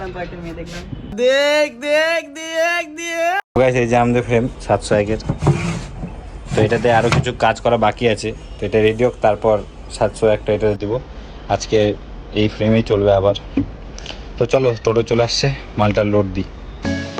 এই যে আমাদের ফ্রেম 701-এর। তো এটাতে আরো কিছু কাজ করা বাকি আছে, তো এটা রেডি হোক, তারপর 701টা এটা দিব। আজকে এই ফ্রেমেই চলবে আবার। তো চলো, টোটো চলে আসছে, মালটা লোড দিই।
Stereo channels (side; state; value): both; identical; correlation 1.00